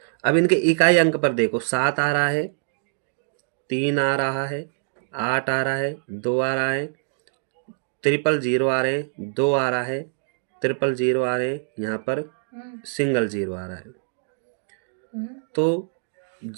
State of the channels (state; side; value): silent; left; digital silence